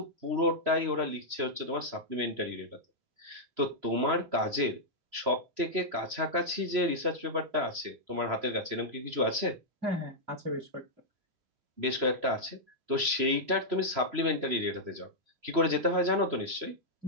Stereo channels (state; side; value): late; left; 3.0 ms